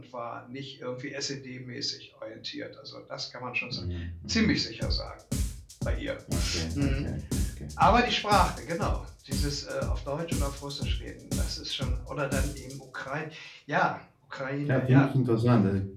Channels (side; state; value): both; identical; correlation 1.00